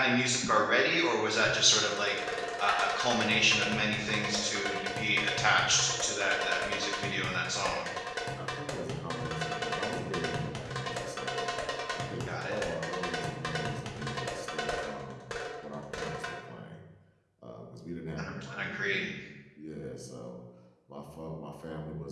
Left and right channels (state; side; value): identical; both; correlation 1.00